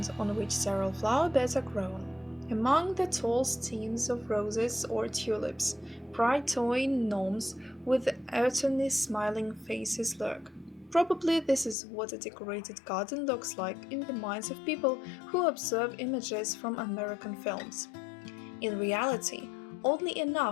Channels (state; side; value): drops out; right; at 11.8 s